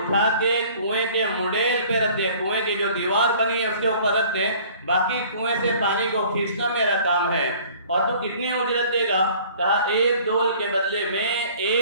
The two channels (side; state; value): both; inverted; correlation -0.51